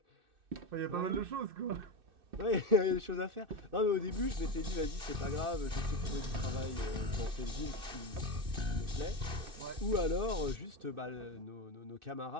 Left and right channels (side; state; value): left; late; 2.6 ms